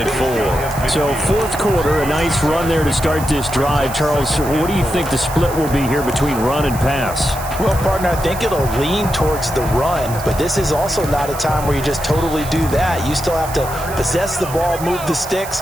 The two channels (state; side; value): noise; right; hiss, 13 dB below the sound